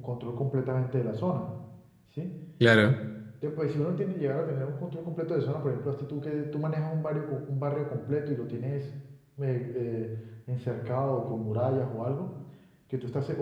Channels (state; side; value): identical; both; correlation 1.00